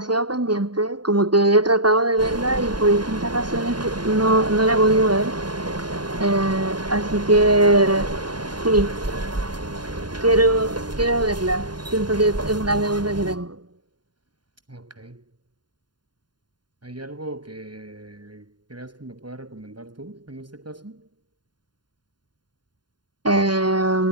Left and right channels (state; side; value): late; left; 0.71 ms